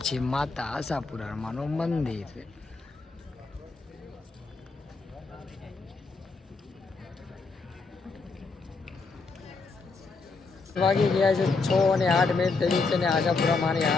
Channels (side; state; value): right; quieter; 4.1 dB